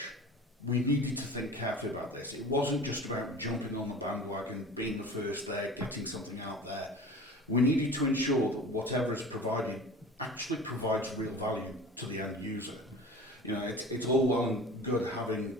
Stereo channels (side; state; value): both; normal; correlation 0.39